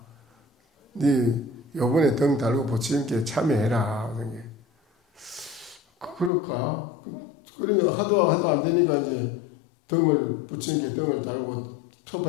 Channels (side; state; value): right; drops out; at 6.3 s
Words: 네 요번에 등 달고 부처님께 참여해라. 그럴까? 그래 하도 안 되니까 이제 부처님께 등을 달고